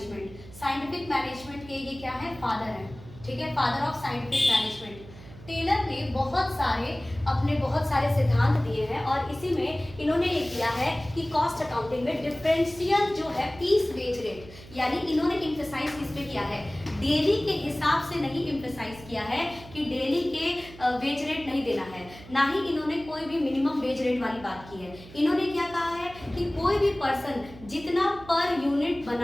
Scientific management के ये क्या है? फादर है। ठीक है, father of scientific management. Taylor ने अपने बहुत सारे सिद्धांत दिए हैं और इसी में इन्होंने ये किया है कि कॉस्ट अकाउंटिंग में डिफरेंशियल जो है पीस वेज रेट, यानी इन्होंने इम्फेसाइज किस पे किया है? डेली के हिसाब से नहीं इम्फेसाइज किया है कि डेली के वेज रेट नहीं देना है, ना ही इन्होंने कोई भी मिनिमम वेज रेट वाली बात की है। इन्होंने क्या कहा है कि कोई भी पर्सन जितना पर यूनिट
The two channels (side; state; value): right; noise; hum, 18 dB below the sound